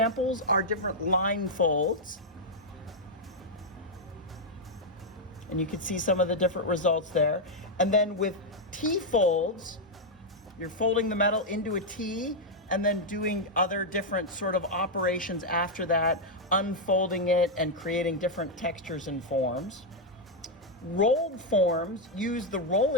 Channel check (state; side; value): normal; both; correlation -0.01